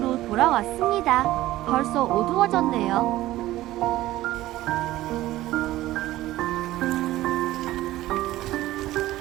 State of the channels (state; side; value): quieter; left; 15.9 dB